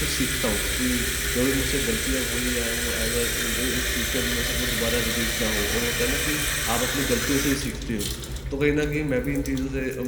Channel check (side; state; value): both; identical; correlation 1.00